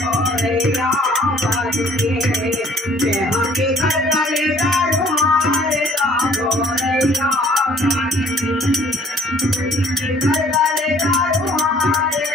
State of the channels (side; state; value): both; normal; correlation 0.56